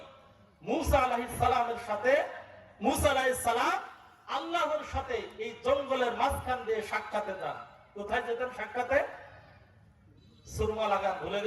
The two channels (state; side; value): identical; both; correlation 1.00